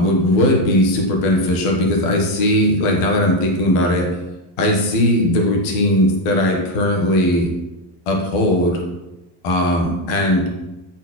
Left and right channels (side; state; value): right; late; 12 ms